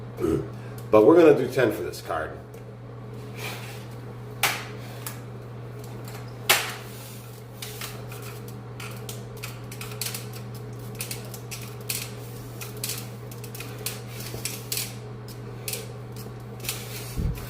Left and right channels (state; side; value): identical; both; correlation 1.00